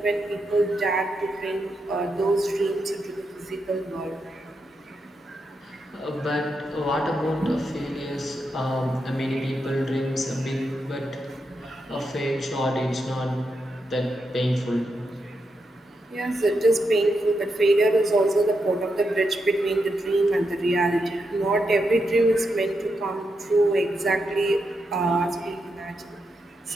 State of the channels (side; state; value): both; normal; correlation 0.84